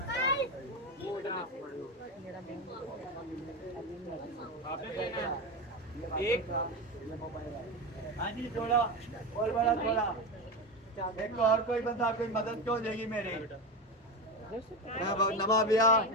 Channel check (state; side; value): normal; both; correlation 0.18